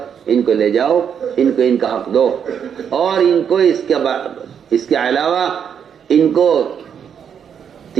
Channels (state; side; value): quieter; left; 7.9 dB